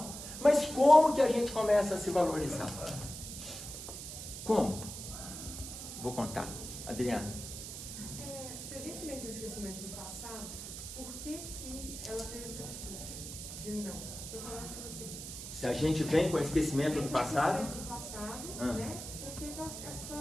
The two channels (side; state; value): right; noise; hiss, 9 dB below the sound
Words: Mas como que a gente começa a se valorizar? Como? Vou contar. Adriana. Se a gente vem com o esquecimento do passado, por que ela tem essa atitude de não? Eu vou falar para você. Se a gente vem com o esquecimento do passado? Né? Porque